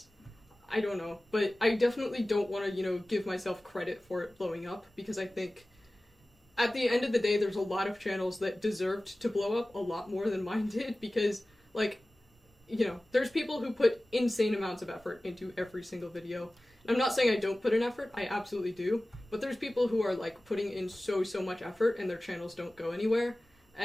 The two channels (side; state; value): both; normal; correlation 0.97